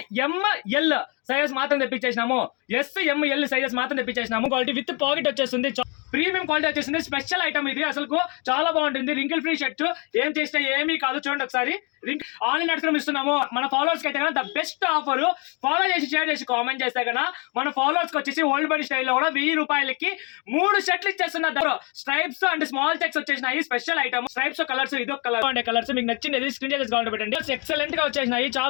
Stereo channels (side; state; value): right; quieter; 32.2 dB